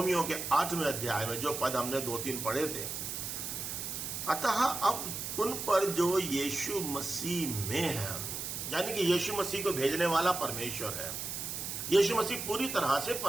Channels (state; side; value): noise; right; hiss, 5 dB below the sound